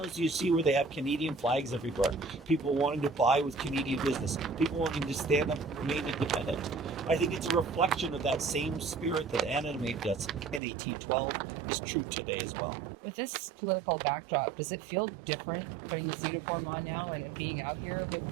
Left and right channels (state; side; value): drops out; left; at 10.6 s